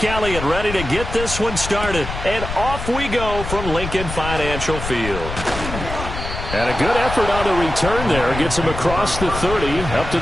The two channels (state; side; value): noise; left; rumble, 7 dB below the sound